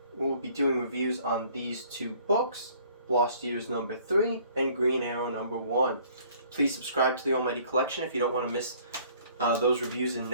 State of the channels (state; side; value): inverted; both; correlation -0.57